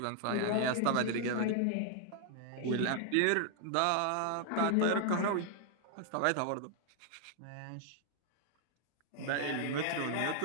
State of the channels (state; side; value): different; both; correlation 0.00